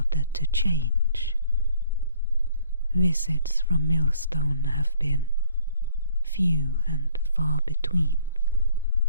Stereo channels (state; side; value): inverted; both; correlation -0.59